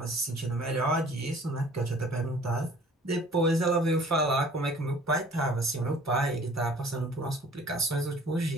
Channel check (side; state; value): both; normal; correlation 0.51